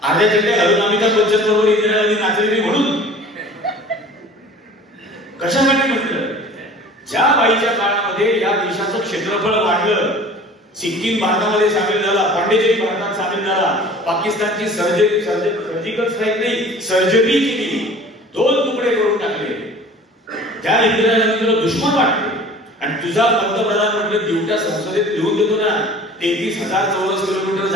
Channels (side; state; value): both; normal; correlation 0.45